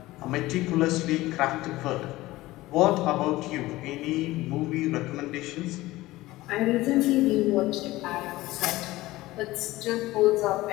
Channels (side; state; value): right; quieter; 18.1 dB